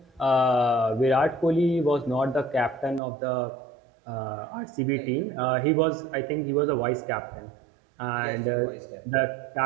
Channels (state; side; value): drops out; left; at 3.0 s